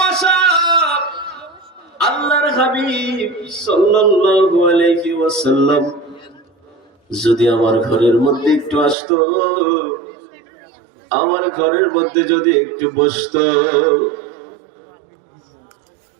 আশা, আল্লাহর হাবিব সাল্লাল্লাহু আলাইহি ওয়াসাল্লাম যদি আমার ঘরের মধ্যে একটু আসতো, আমার ঘরের মধ্যে যদি একটু বসতো।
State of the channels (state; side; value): drops out; left; at 9.0 s